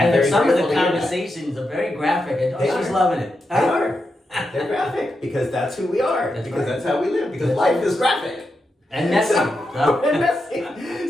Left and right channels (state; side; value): normal; both; correlation 0.86